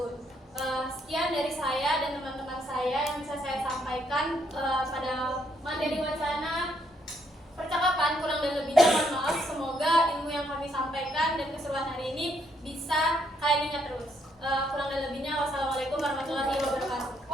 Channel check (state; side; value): normal; both; correlation 0.73